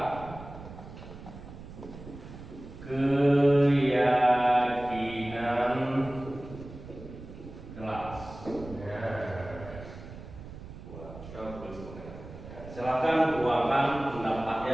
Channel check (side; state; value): right; noise; rumble, 14 dB below the sound